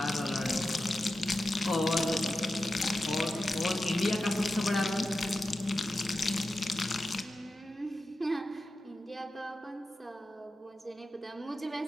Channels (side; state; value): both; normal; correlation 0.92